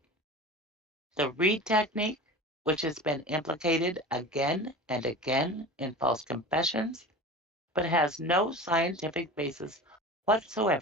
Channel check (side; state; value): both; normal; correlation 0.34